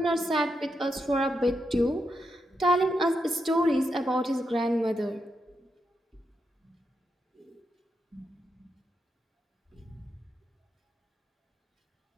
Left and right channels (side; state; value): both; normal; correlation 0.84